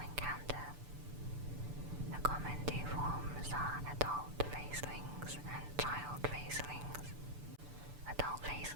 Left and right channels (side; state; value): left; late; 6.8 ms